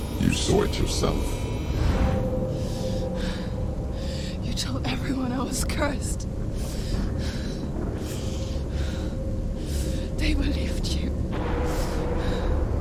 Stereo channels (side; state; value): both; identical; correlation 1.00